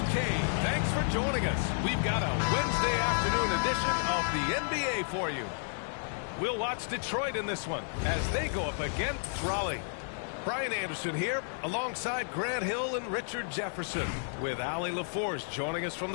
thanks for joining us. We've got a Wednesday afternoon edition of the NBA for you. We'll watch Detroit in this one as they go up against Raleigh. Brian Anderson here alongside Grant Hill and Richard Jefferson with Ali LaForce joining us from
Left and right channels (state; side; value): silent; right; 57 dB below the other